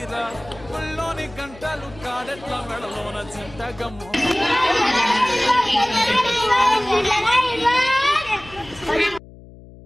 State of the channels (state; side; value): noise; left; hum, 20 dB below the sound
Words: ఒళ్ళోని గంటలు కాడెట్ల మెడలోన చింతగమ్ము